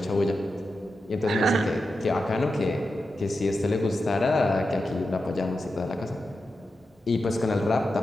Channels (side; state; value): both; normal; correlation 0.89